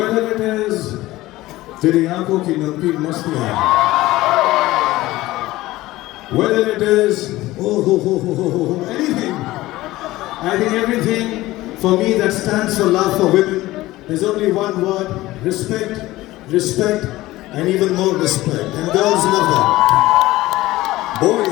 it is तेरी आंखों की नमकीन मस्तियां, whether it is anything, I think everything for me that stands for love for women, there's only one word: respect, respect, and even more respect. And girls love that.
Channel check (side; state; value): right; quieter; 17.5 dB